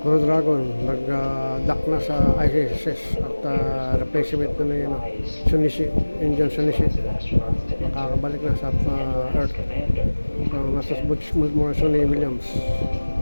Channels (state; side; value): inverted; both; correlation -1.00